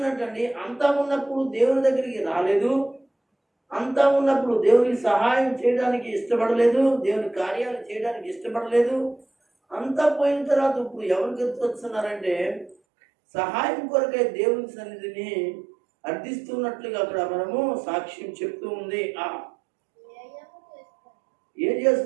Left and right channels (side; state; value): left; drops out; at 12.8 s